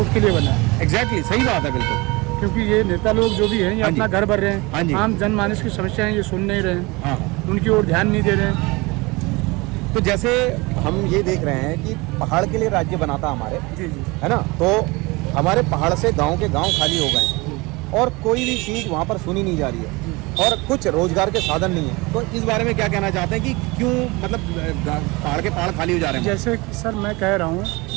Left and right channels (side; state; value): left; quieter; 24.5 dB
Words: के लिए बना है। एग्जैक्टली सही बात है, बिल्कुल। क्योंकि ये नेता लोग जो भी हैं, ये हाँ जी। अपना घर भर रहे हाँ जी। हैं, आम जनमानस की समस्याएं ये सुन नहीं रहे हैं, हाँ उनकी ओर ध्यान नहीं दे रहे हैं। तो जैसे हम ये देख रहे हैं कि पहाड़ के लिए राज्य बना था हमारे, जी जी, है ना, तो हमारे पहाड़ से गांव के गांव खाली हो गए हैं और कोई भी चीज़ वहाँ पर सुनी नहीं जा रही है और कुछ रोजगार के साधन नहीं है। तो इस बारे में क्या कहना चाहते हैं कि क्यों मतलब पहाड़ के पहाड़ खाली हो जा रहे हैं? जैसे कि सर मैं कह रहा हूँ,